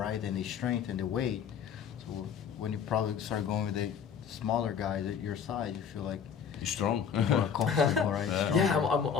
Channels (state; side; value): quieter; right; 7.4 dB